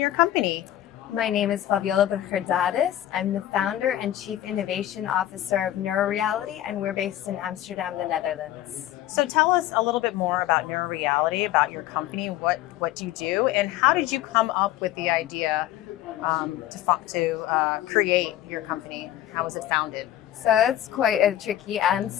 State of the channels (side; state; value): right; quieter; 13.1 dB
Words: company? My name is Faviola Brugger-Dadis. I'm the founder and chief innovation officer of NeuroReality, and we're based in Amsterdam, the Netherlands. So tell us a little bit more about NeuroReality, about your company, what you do, and how did you come up with the idea to create your company? How was it founded? So that's quite a tricky